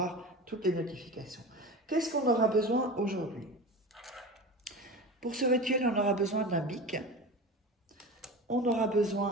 toutes les notifications. Qu'est-ce qu'on aura besoin aujourd'hui? Pour ce rituel, on aura besoin d'un bic, on aura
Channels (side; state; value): both; normal; correlation 0.31